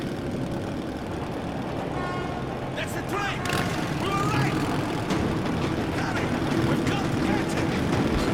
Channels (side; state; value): both; identical; correlation 1.00